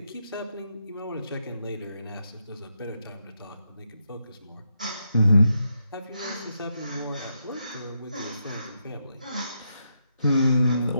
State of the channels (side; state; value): both; inverted; correlation -0.81